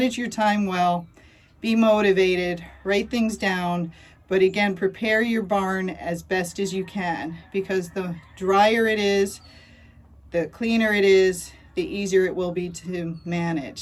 your time well, be motivated, write things down, but again, prepare your barn as best as you can, because the drier it is, the cleaner it is, the easier it will be to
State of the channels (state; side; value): identical; both; correlation 1.00